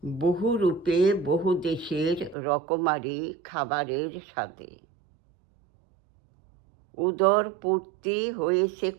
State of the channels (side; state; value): left; drops out; at 2.4 s